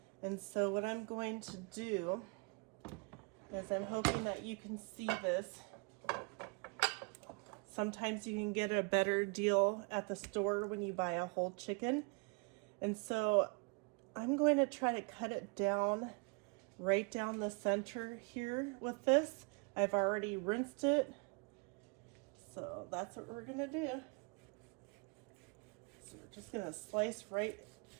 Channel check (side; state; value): left; quieter; 32.9 dB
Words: And so what I'm going to do is I'm hoping that you can see this. Sometimes you can get a better deal at the store when you buy a whole chicken. And so I'm going to try to cut it down right down the center here with this. I've already rinsed it. So that's what we're gonna do. So we're just gonna slice right